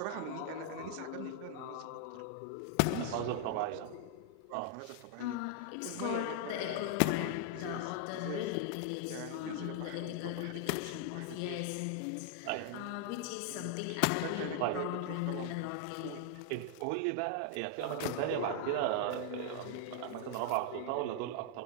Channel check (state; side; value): different; both; correlation 0.00